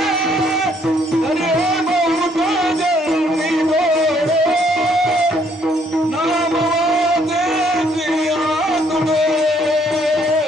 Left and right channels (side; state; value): both; normal; correlation 0.67